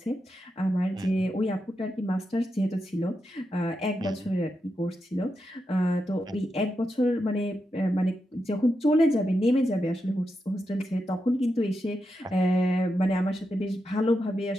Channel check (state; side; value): normal; both; correlation 0.86